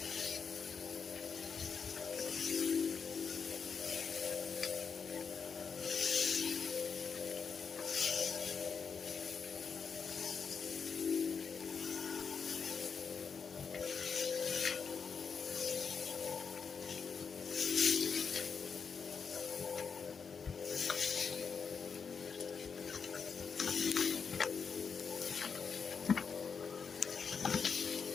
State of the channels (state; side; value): quieter; right; 5.9 dB